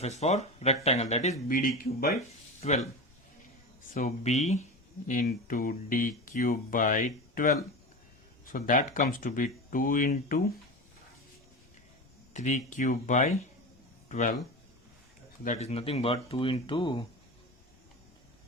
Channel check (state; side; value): normal; both; correlation 0.26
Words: for rectangle, that is BD cube by 12. So B into D cube by 12. So that comes to be 2 into 3 cube by 12. So that is nothing but 2 into